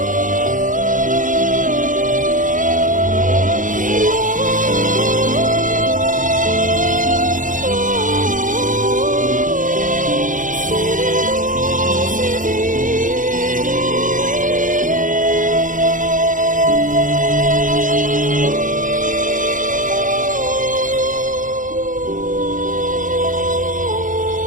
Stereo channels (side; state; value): left; late; 0.38 ms